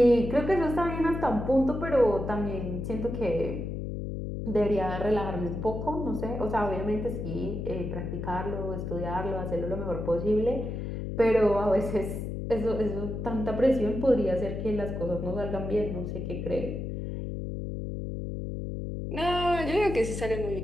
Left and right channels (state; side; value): noise; left; hum, 5 dB below the sound